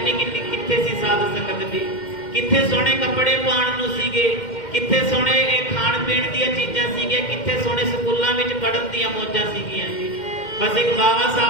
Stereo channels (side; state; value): right; late; 2.1 ms